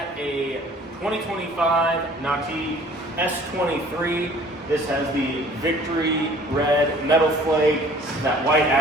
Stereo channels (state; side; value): normal; both; correlation 0.52